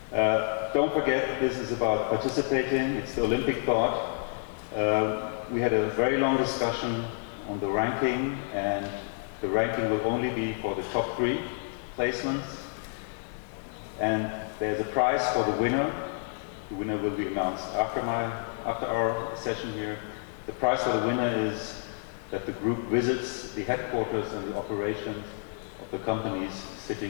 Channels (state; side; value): silent; right; 58 dB below the other